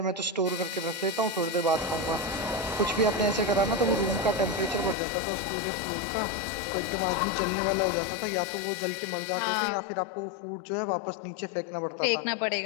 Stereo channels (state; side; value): drops out; right; at 5.0 s